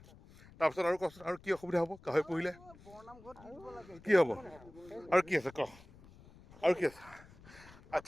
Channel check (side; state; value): left; noise; rumble, 22 dB below the sound